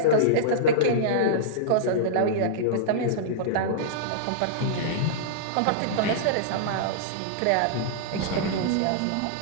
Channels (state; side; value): different; both; correlation -0.03